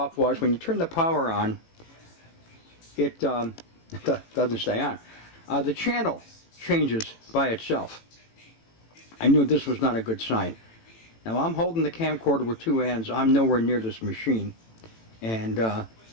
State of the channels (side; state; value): right; late; 18 ms